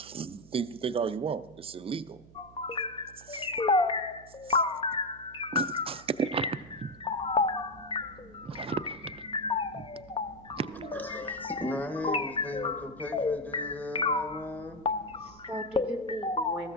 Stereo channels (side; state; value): right; noise; hum, 22 dB below the sound